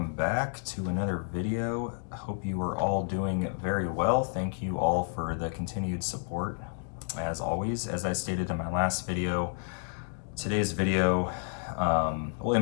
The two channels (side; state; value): right; silent; digital silence